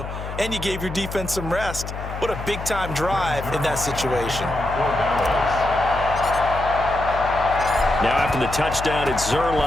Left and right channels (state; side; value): noise; left; hum, 8 dB below the sound